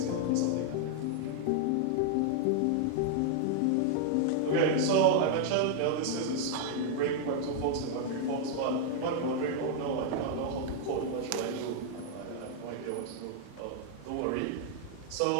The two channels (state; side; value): different; both; correlation 0.00